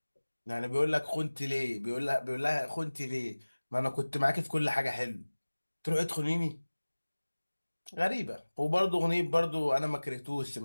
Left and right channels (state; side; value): inverted; both; correlation -1.00